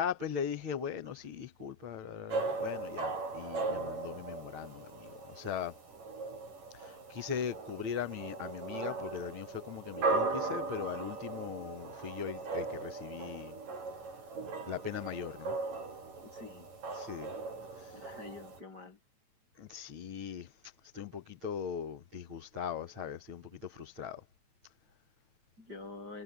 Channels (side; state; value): left; late; 9.0 ms